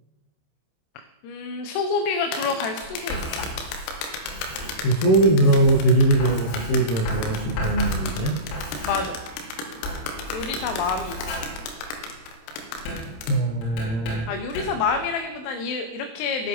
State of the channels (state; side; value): late; right; 27 ms